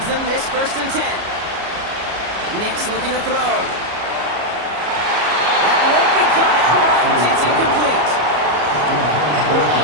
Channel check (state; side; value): late; left; 33 ms